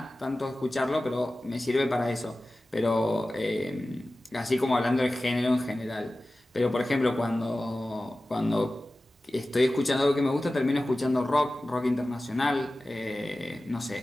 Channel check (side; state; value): both; normal; correlation 0.96